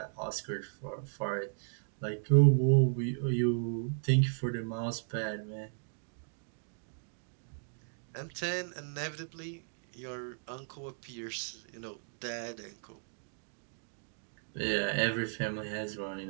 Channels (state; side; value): silent; left; digital silence